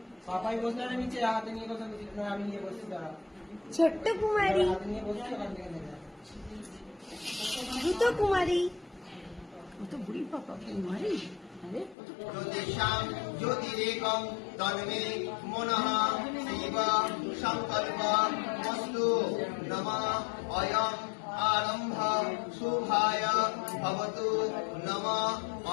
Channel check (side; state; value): right; drops out; at 12.0 s